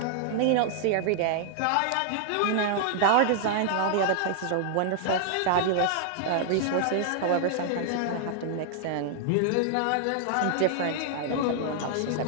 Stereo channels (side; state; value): both; different; correlation -0.01